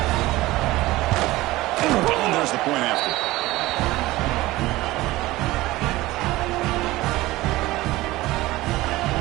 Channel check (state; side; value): quieter; left; 18.4 dB